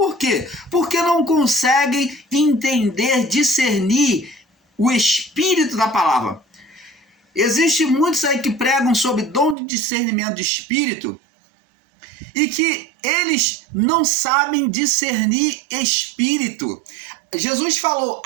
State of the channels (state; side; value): drops out; left; at 9.6 s